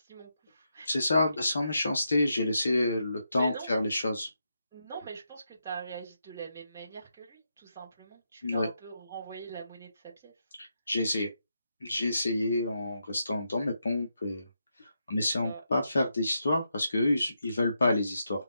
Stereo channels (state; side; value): inverted; both; correlation -0.83